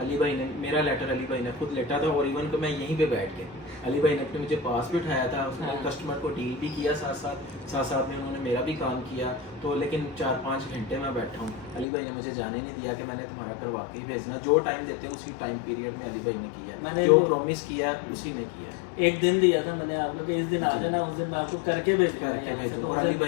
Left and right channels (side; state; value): right; drops out; at 11.9 s